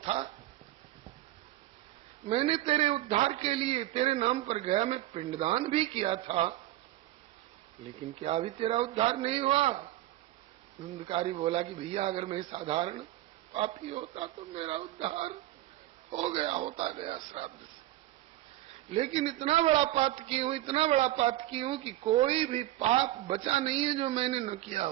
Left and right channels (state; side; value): quieter; left; 15.6 dB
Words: मैंने तेरे उद्धार के लिए तेरे नाम पर गया में पिंडदान भी किया था, लेकिन क्या अभी तेरा उद्धार नहीं हुआ? धुंधकारी बोला कि भैया अगर मैं साधारण पापी होता तो मेरा उद्धार हो गया, होता गया श्राद्ध से। लेकिन इतना बड़ा पाप की हूं, इतना बड़ा पाप की हूं कि कोई भी पाप बचा नहीं है जो मैंने न किया